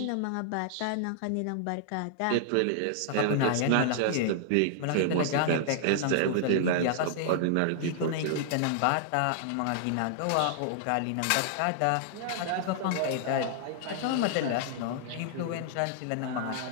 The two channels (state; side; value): different; both; correlation -0.01